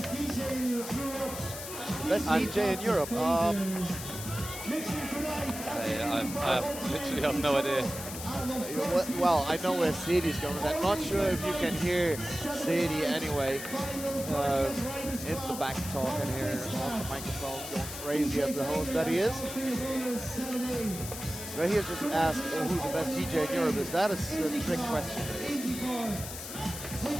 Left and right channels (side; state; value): left; noise; hiss, 9 dB below the sound